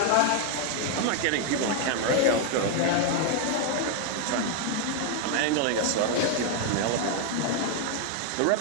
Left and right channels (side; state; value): both; different; correlation 0.00